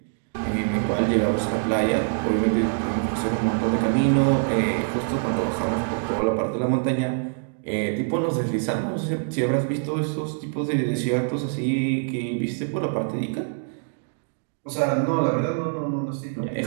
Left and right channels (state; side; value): silent; left; digital silence